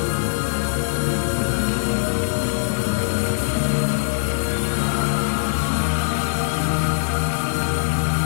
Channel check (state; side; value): silent; right; digital silence